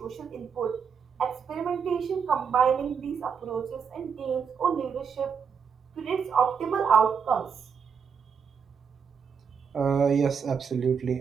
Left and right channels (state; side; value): quieter; left; 6.6 dB